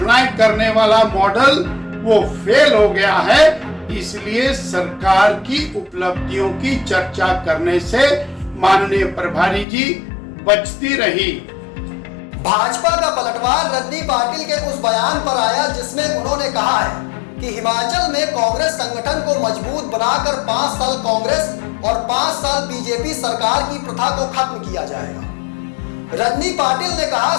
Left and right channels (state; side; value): drops out; right; at 9.7 s